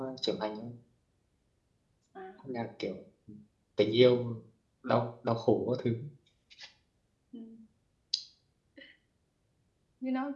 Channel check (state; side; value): identical; both; correlation 1.00